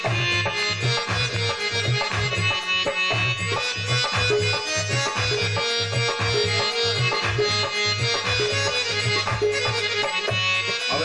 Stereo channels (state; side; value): identical; both; correlation 1.00